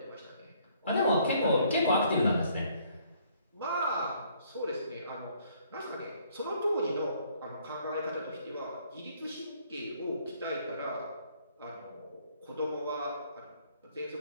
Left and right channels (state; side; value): inverted; both; correlation -0.64